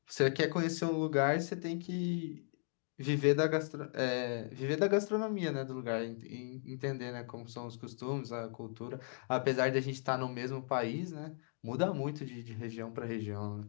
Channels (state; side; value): silent; right; 53 dB below the other